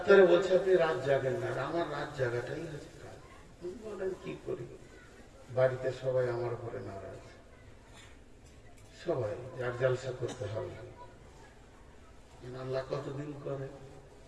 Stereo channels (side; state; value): both; identical; correlation 1.00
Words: বলছে আপনি রাত জাগেন না, আর আমার রাত জাগাটাই হচ্ছে কাজ। বলেন কি করি? বাড়িতে সবাই আমার উপরে নারাজ, সবাই যার জালসা করতে হবে। আল্লাহ কতদিন করে?